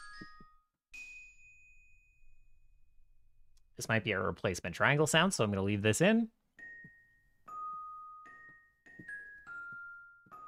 This might be a replacement triangle sound, so I'm gonna leave this in.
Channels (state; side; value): identical; both; correlation 1.00